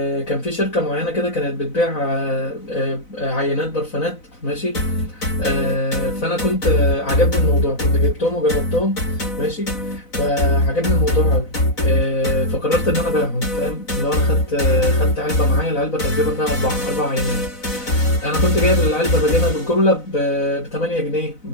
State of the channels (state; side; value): late; right; 4.0 ms